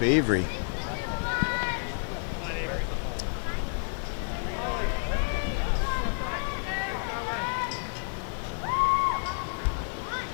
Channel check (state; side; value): silent; right; digital silence